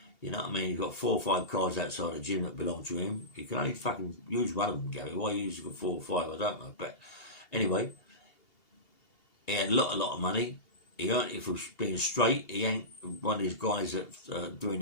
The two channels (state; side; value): late; right; 2.8 ms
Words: You know what I mean? He's got 4 or 5 cars outside the gym that belong to him. You can only fucking use one of them, Gary. Why you use 4 or 5, I don't know. But anyway, he had a lot of money. He earned it for being straight. He ain't one of these guys that do